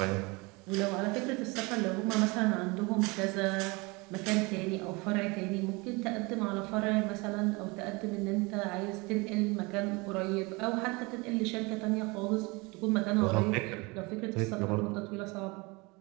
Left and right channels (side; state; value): left; quieter; 26.2 dB